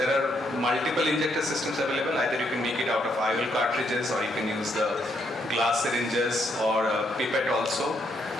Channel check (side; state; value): both; normal; correlation 0.75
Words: are multiple injector systems available. Either you can make it out of IOL cartridges, or you can use the glass syringes or a pipette also.